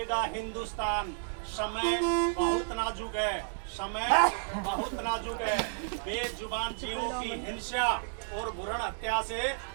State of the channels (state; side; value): silent; left; digital silence